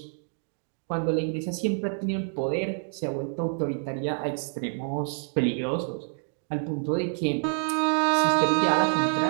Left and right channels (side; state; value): left; silent; 60 dB below the other